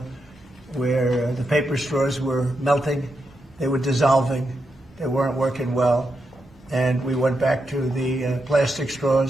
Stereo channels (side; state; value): both; normal; correlation 0.85